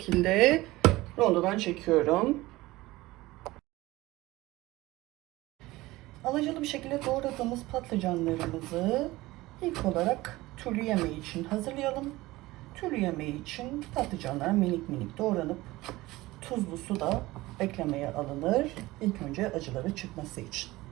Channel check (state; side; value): quieter; left; 19.1 dB